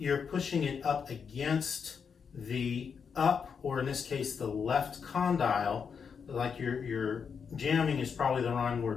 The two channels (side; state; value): right; quieter; 6.4 dB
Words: pushing it up against the or in this case, the left condyle. Like you're jamming is probably the wrong